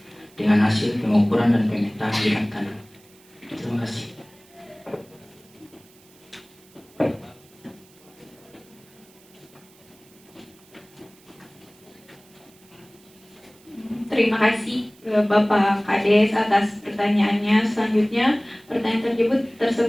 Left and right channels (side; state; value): right; noise; hiss, 28 dB below the sound